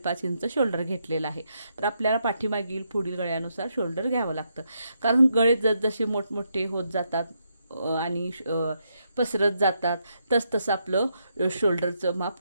इंच शोल्डर घेतलेला आहे. तर आपल्याला पाठीमागील पुढील गळ्यानुसार शोल्डर घ्यावं लागतं, कारण गळे जसजसे मोठमोठे होत जातात आणि पसरत जातात तसतसं आपलं शोल्डरचं माप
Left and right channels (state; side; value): inverted; both; correlation -0.79